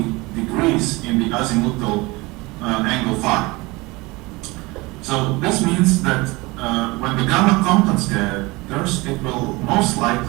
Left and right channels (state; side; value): quieter; left; 23.3 dB